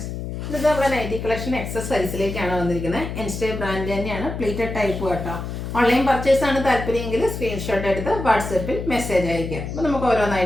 ഇത് നമ്മുടെ nightie collection excess സൈസിലേക്കാണ് വന്നിരിക്കുന്നത്. എൻസ്റ്റേ ബ്രാൻഡ് തന്നെയാണ്, പ്ലീറ്റഡ് ടൈപ്പ് കേട്ടോ. ഓൺലൈൻ പർച്ചേസ് ആണ് താല്പര്യമെങ്കിൽ സ്ക്രീൻഷോട്ട് എടുത്ത് വാട്സപ്പിൽ മെസ്സേജ് അയക്കുക. അപ്പോൾ നമുക്ക്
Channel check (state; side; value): noise; left; hum, 6 dB below the sound